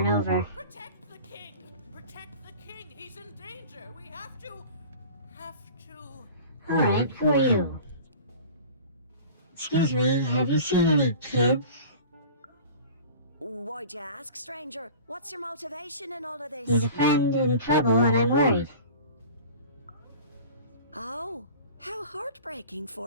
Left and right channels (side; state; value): both; inverted; correlation -0.41